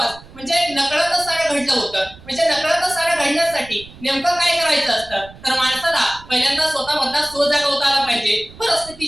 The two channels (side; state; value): right; noise; rumble, 20 dB below the sound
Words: म्हणजे नकळतच सारं घडलं होतं. म्हणजे नकळतच सारं घडण्यासाठी नेमकं काय करायचं असतं, तर माणसाला पहिल्यांदा स्वतःमधला स्व जागवता आला पाहिजे,